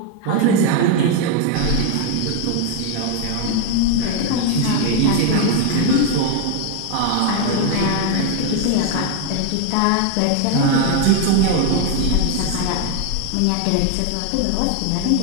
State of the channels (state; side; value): different; both; correlation 0.01